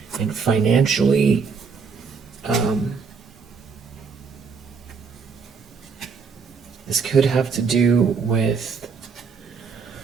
and financially. This could have to do with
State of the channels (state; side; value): quieter; left; 5.4 dB